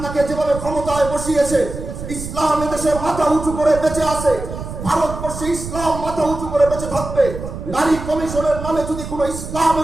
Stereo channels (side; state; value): right; noise; rumble, 9 dB below the sound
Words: যেভাবে ক্ষমতায় বসিয়েছে, ইসলাম এদেশের মাথা উঁচু করে বেঁচে আছে, ভারতবর্ষে ইসলাম মাথা উঁচু করে বেঁচে থাকবে। নারী কমিশনের নামে যদি কোনো